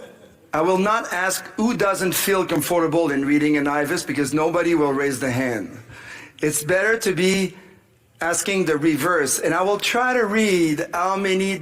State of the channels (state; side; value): identical; both; correlation 1.00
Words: I will not ask who doesn't feel comfortable in reading an IVUS, because nobody will raise the hand. It's better to be asking the reverse, and I will try to read how many